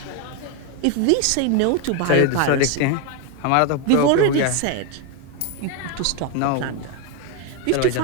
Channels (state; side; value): different; both; correlation 0.01